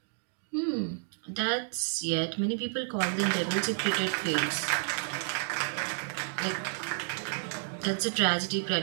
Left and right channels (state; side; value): silent; left; digital silence